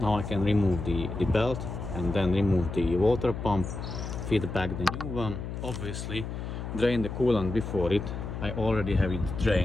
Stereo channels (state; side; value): noise; left; hum, 6 dB below the sound